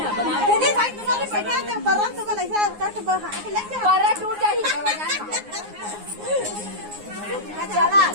दीदी भाई तुम्हारे पैसा तो परम तो ऐसा कट बहा के लग जा पर टूट जाही चला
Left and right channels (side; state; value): left; late; 9.6 ms